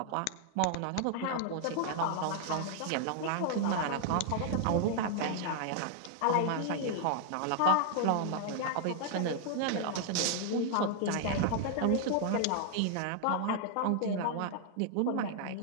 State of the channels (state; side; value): different; both; correlation 0.00